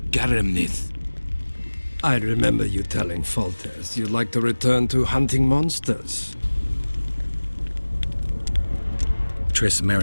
Garamnith. I remember you telling Foltest you'd like to return to hunting monsters. Triss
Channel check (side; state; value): both; inverted; correlation -1.00